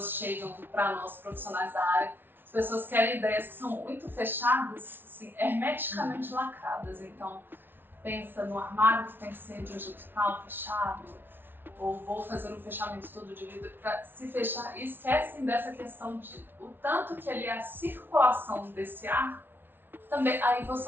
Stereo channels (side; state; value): left; late; 0.10 ms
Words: chegam para nós, profissionais da área, as pessoas querem ideias que são muito fechadas, assim, hermeticamente lacradas. Então, pensa no armário que tem que ser de um jeito tal, fechado, ou vou fazer um fechamento todo de vidro para se fechar, e esquecem dessa questão de o tanto que ali é a circulação desse ar. Também, aí você